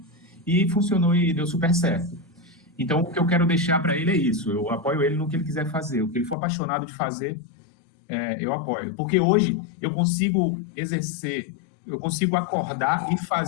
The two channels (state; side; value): drops out; right; at 6.4 s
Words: e funcionou e deu super certo. Então, o que eu quero deixar para ele é isso, eu apoio ele no que ele quiser fazer, o que ele for apaixonado de fazer, eu apoio. Porque hoje eu consigo exercer, eu consigo acordar e